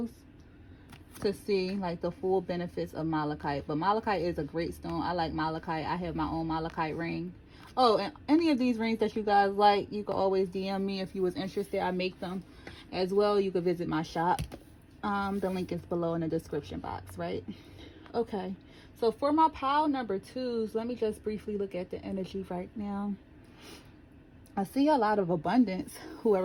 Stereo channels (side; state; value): both; identical; correlation 1.00